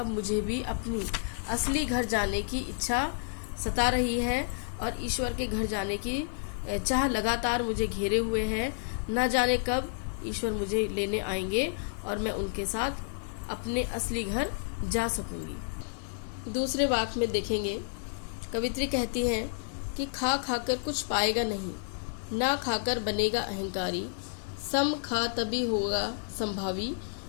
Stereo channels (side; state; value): right; silent; 57 dB below the other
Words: मुझे भी अपनी असली घर जाने की इच्छा सता रही है और ईश्वर के घर जाने की चाह लगातार मुझे घेरे हुए हैं। न जाने कब ईश्वर मुझे लेने आएंगे और मैं उनके साथ अपने असली घर जा सकूंगी। दूसरे वाक्य में देखेंगे, कवित्री कहती हैं कि खा खाकर कुछ पाएगा नहीं, ना खाकर बनेगा अहंकारी, सम खा तभी होगा संभावी,